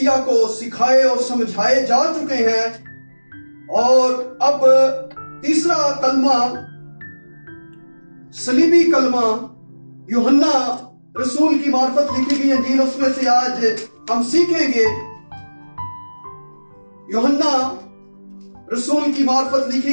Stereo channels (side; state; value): both; inverted; correlation -1.00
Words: کو سکھائے اور سمجھائے جا چکے ہیں، اور اب تیسرا کلمہ صلیبی کلمہ یوحنا رسول کی معرفت لکھی گئی انجیل، اس میں سے آج ہم سیکھیں گے۔ یوحنا رسول کی معرفت